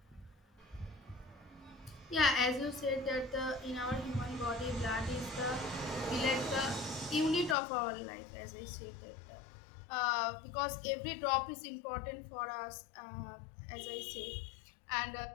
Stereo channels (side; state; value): right; drops out; at 7.6 s